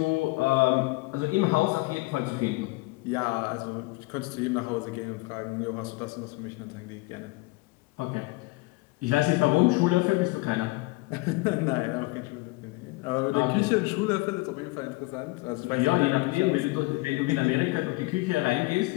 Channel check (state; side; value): quieter; right; 23.0 dB